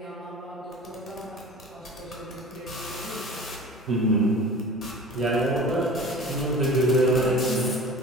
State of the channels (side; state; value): both; normal; correlation 0.39